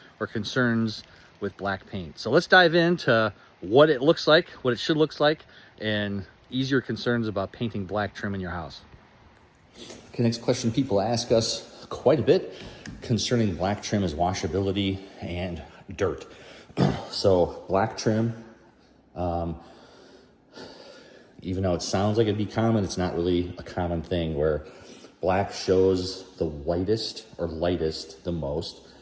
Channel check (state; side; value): identical; both; correlation 1.00